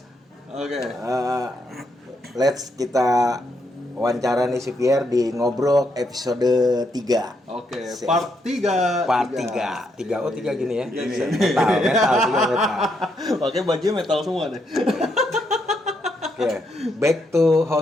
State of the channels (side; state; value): both; normal; correlation 0.78